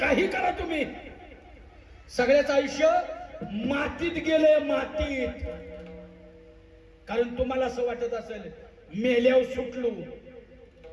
करा तुम्ही, सगळ्याच आयुष्य मातीत गेलंय, मातीत. कारण तुम्हाला असं वाटत असेल मेल्यावर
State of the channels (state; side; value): identical; both; correlation 1.00